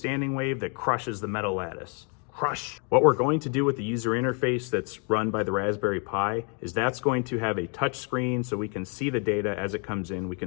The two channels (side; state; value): right; quieter; 38.0 dB